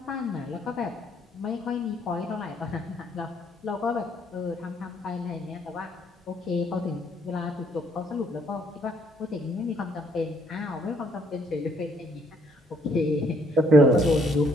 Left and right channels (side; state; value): both; normal; correlation 0.67